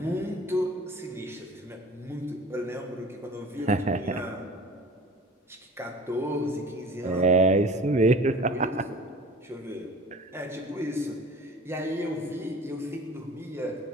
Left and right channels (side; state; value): both; normal; correlation 0.43